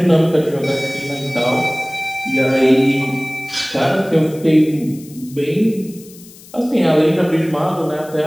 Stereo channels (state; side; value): noise; left; hiss, 21 dB below the sound